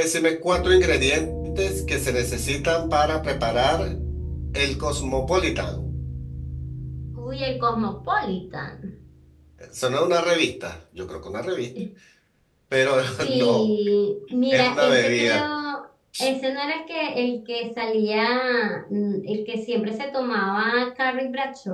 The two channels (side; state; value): both; identical; correlation 1.00